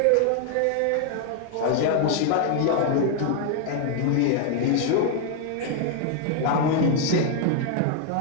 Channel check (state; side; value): different; both; correlation 0.00